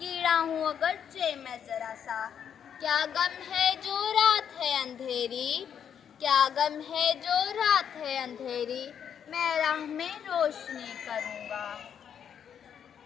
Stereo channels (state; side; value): quieter; right; 8.4 dB